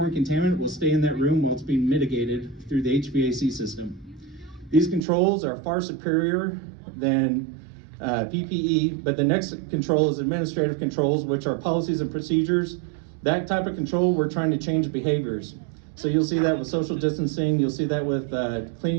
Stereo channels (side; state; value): left; drops out; at 5.0 s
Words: contaminant, will stay in that room while it's being mitigated through the HVAC system. These controls are far superior than PPE, but the next control is administrative controls, which are policies and procedures. That type of control, we're trying to change behaviors. So you'll see that with social distancing, you'll see that with